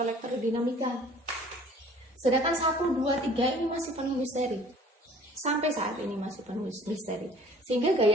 elektrodinamika. Sedangkan 1, 2, 3 ini masih penuh misteri. Sampai saat ini masih penuh misteri. Sehingga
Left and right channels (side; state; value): both; normal; correlation 0.51